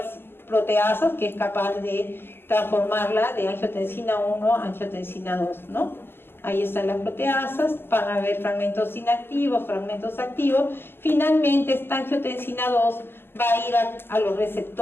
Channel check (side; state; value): right; late; 0.11 ms